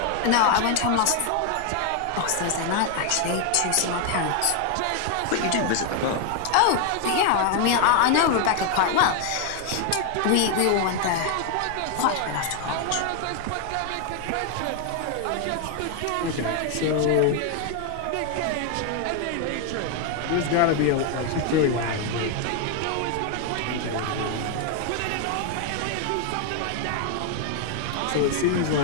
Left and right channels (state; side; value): different; both; correlation 0.01